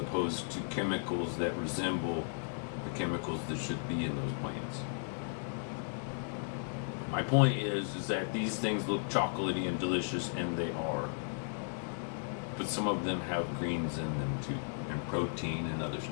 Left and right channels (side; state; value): right; silent; digital silence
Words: to chemicals that resemble the chemicals that should be in those plants. My point is that these things look chocolatey and delicious, and they are. But some of them have greens in them too, and protein and other